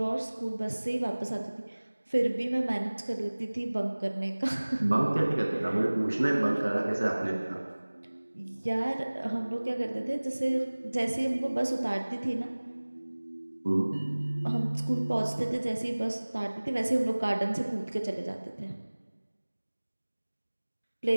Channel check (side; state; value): both; inverted; correlation -1.00